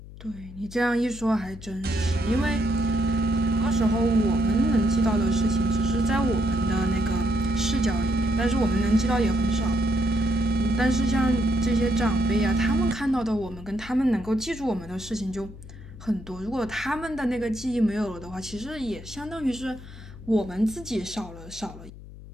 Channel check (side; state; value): left; noise; hum, 16 dB below the sound